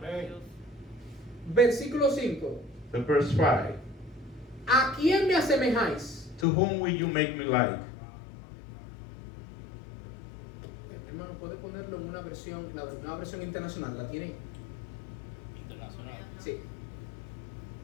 a Dios. Versículo 5. The verse 5. ¿A quién me asemejáis? To whom will you make me like? Hermano, ¿puede ponerlo en una versión, la nueva versión internacional? ¿La tiene? Internacional. Sí.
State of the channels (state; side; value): drops out; right; at 6.5 s